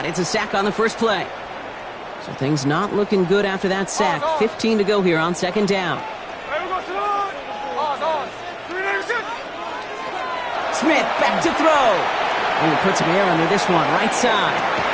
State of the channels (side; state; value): both; identical; correlation 1.00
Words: It's a sack on the first play. So things not looking good after that sack. 15 to go here on 2nd down. Smith back to throw. And he puts some air under this one, right side.